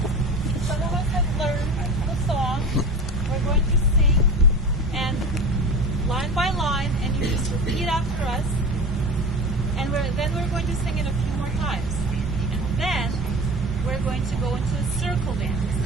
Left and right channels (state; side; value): normal; both; correlation 0.32